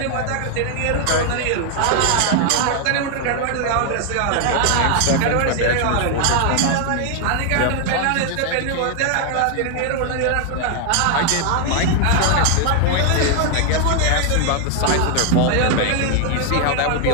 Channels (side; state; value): both; different; correlation 0.00